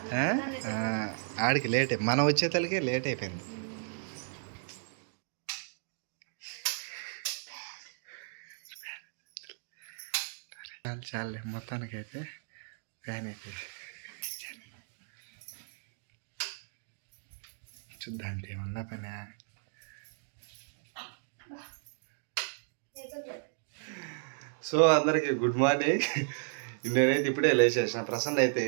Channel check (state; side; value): silent; left; digital silence